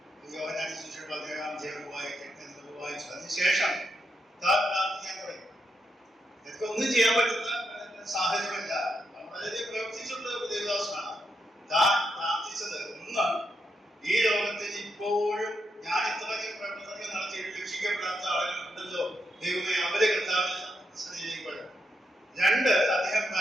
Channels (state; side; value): normal; both; correlation 0.82